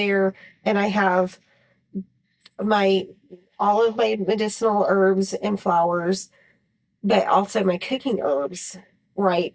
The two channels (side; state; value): both; identical; correlation 1.00